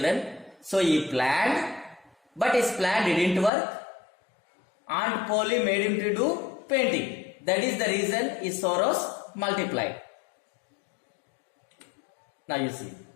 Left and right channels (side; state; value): right; drops out; at 3.5 s